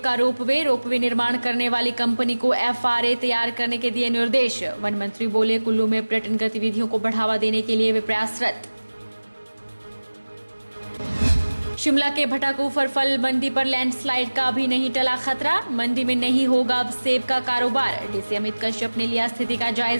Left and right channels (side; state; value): both; inverted; correlation -1.00